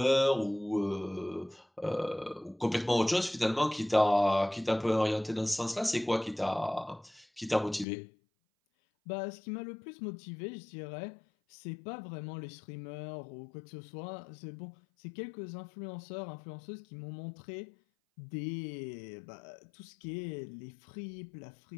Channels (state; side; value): drops out; right; at 7.9 s